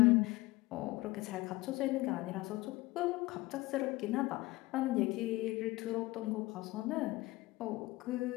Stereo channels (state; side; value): quieter; right; 20.2 dB